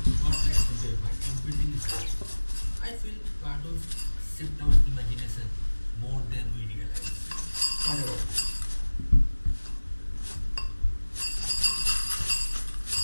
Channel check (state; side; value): inverted; both; correlation -1.00